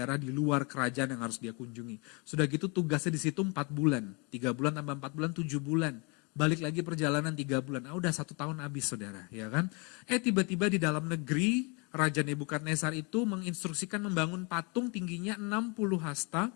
di luar kerajaan yang harus dia kunjungi. Sudah gitu tugasnya di situ 4 bulan. 3 bulan tambah 4 bulan, 7 bulan. Balik lagi perjalanan 3 bulan. Udah 1 tahun habis, saudara, ya kan? Tiba-tiba di dalam negeri, Raja Nebukadnezar itu menginstruksikan membangun patung tingginya 60 hasta,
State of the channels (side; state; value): right; quieter; 31.0 dB